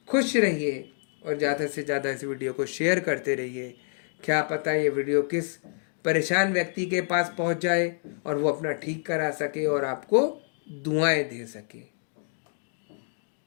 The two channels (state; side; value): silent; right; 55 dB below the other